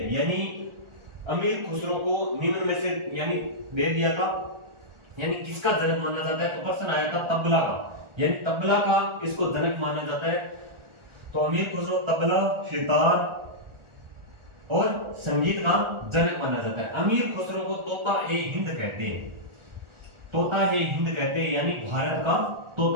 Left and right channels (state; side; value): late; left; 1.4 ms